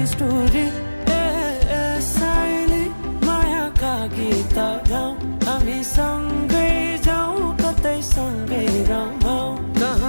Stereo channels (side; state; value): both; inverted; correlation -1.00